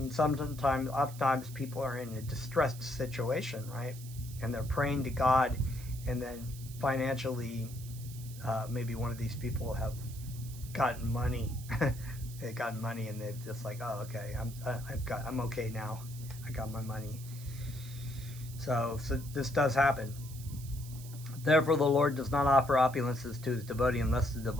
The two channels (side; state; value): right; noise; hiss, 16 dB below the sound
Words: oftentimes people are in a distressed situation, right? And they're praying to God, and then financially, maybe one of these people have gotten money. They've gotten money, and they've just like, oh, okay, I'm okay now. I got my money. So this does happen. Therefore, the Lord does not offer opulences to his devotee unless the